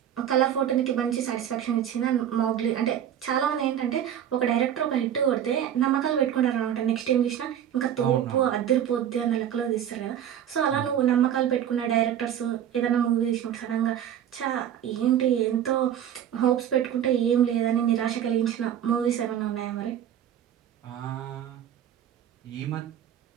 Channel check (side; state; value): left; quieter; 10.0 dB